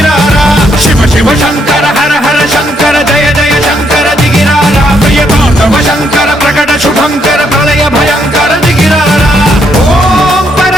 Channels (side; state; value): both; normal; correlation 0.74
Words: శివ శివ శంకర హర హర శంకర జయ జయ శంకర దిగిరారా ప్రియ తాండవ శంకర ప్రకట శుభంకర ప్రళయ భయంకర దిగిరారా ఓం